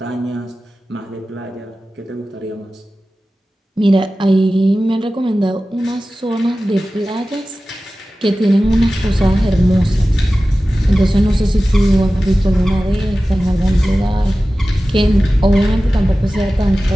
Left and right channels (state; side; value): normal; both; correlation 0.96